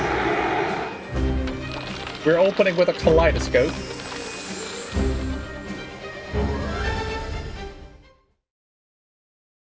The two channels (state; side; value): identical; both; correlation 1.00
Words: We're opening with a kaleidoscope.